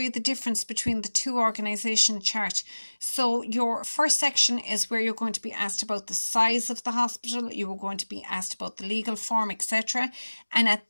the difference between the two organisation chart. So your first section is where you're going to be asked about the size of the hospital, you were going to be asked about the legal form, etc. And at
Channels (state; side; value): inverted; both; correlation -1.00